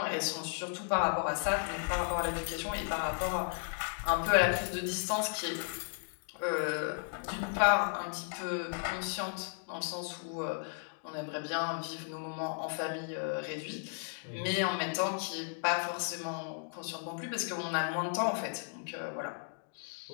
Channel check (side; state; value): right; silent; digital silence